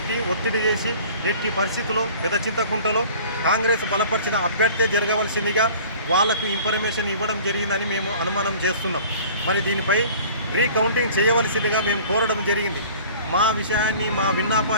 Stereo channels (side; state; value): both; inverted; correlation -0.46